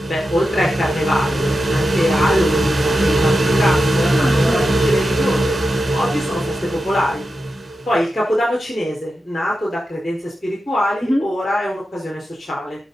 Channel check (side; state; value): both; normal; correlation 0.90